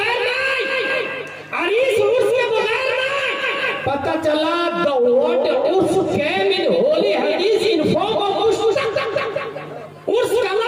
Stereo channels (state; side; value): identical; both; correlation 1.00